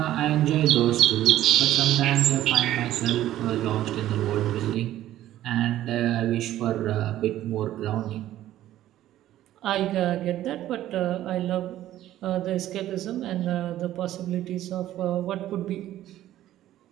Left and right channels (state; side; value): quieter; left; 13.4 dB